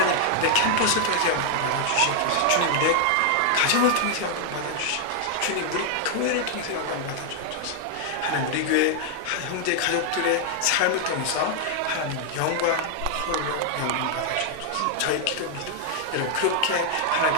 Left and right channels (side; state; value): both; different; correlation 0.00